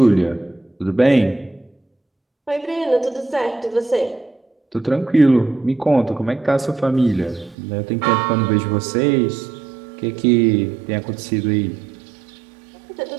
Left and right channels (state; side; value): drops out; left; at 7.6 s